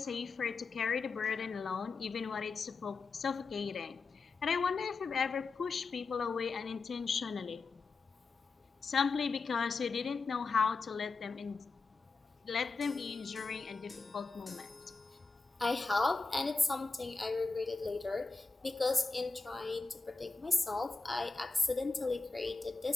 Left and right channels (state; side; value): quieter; right; 4.1 dB